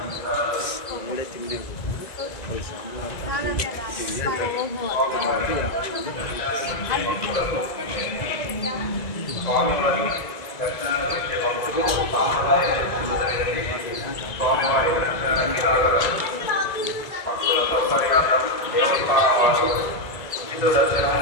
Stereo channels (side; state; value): right; late; 2.0 ms